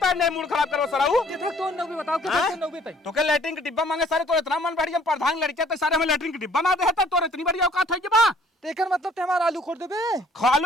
तार नहीं मूड खराब करो सराऊ कितना तो नौबे बताओ कितना नौबे तई तो के लैट्रिन के डिब्बा मांगे सारे तो इतना मन बढ़ हम प्रधान लड़के तो सारे हमें लैट्रिन के डिब्बा ना दे है तो इतनी बड़ी औकात है बा तेकर मतलब ते हमारा आलू खोद देबे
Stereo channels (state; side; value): normal; both; correlation 0.58